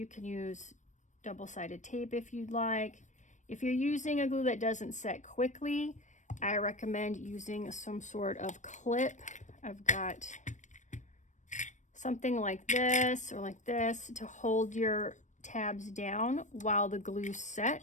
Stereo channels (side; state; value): right; late; 0.35 ms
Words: can use double-sided tape if you'd like. If you're using a glue that doesn't set quickly, I recommend using some sort of clip. I've got something like this or like this to hold your tabs down while the glue